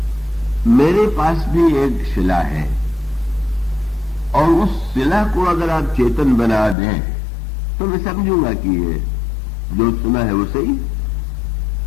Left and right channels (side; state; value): right; drops out; at 6.8 s